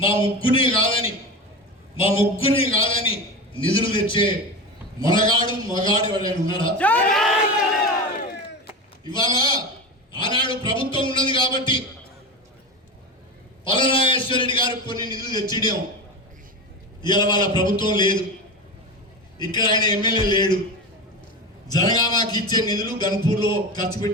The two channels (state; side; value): normal; both; correlation 0.24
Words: మా ముగ్గురిని కాదని నిధులు తెచ్చే మొనగాడు మగాడు ఎవరైనా ఉన్నాడా? ఇవాళ ఆనాడు ప్రభుత్వం ఉన్నది కాబట్టి పల్లరాజేశ్వర రెడ్డి గారు కొన్ని నిధులు తెచ్చిడం. ఇవాళ వాళ్ళ ప్రభుత్వం లేదు, ఇక్కడ ఆయన ఎమ్మెల్యే లేడు. జనగామకి ఇచ్చే నిధులు గన్పూర్లో ఖర్చు